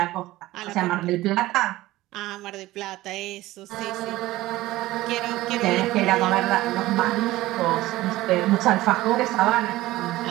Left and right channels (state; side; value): quieter; left; 17.2 dB